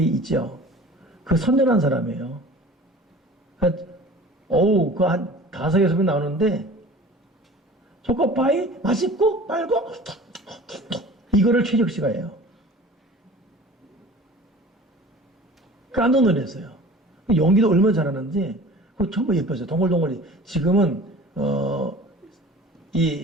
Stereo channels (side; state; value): both; normal; correlation 0.43